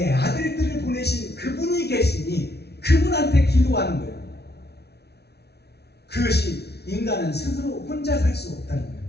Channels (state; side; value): late; right; 0.48 ms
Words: 아들들을 보내신 그분이 계시니 그분한테 기도하는 거예요. 그것이 인간은 스스로 혼자 살 수 없다는 거예요.